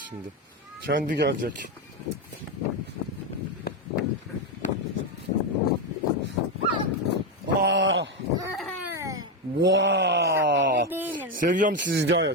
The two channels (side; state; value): both; normal; correlation 0.09